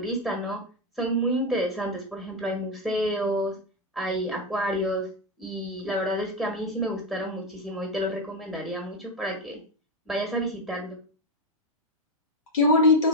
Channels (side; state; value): both; normal; correlation 0.09